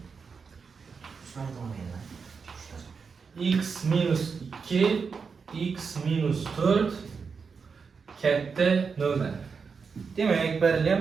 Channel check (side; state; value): left; quieter; 5.5 dB